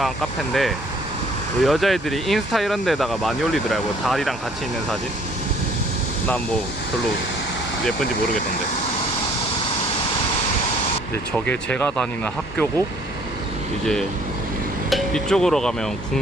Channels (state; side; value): normal; both; correlation 0.59